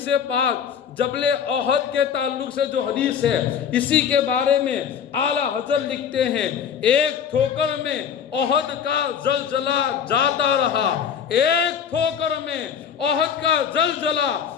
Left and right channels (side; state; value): right; quieter; 7.8 dB